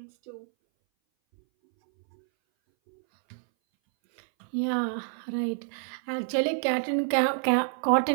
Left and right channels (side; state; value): left; silent; 60 dB below the other